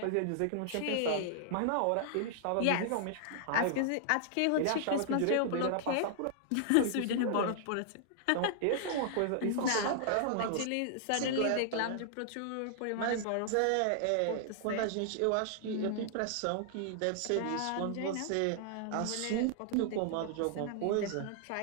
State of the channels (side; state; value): both; different; correlation -0.01